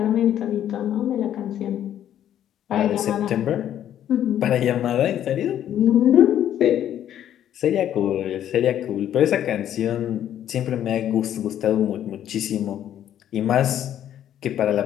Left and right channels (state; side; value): quieter; right; 10.8 dB